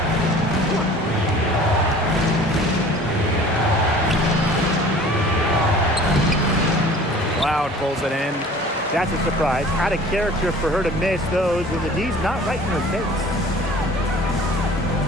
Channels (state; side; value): normal; both; correlation 0.46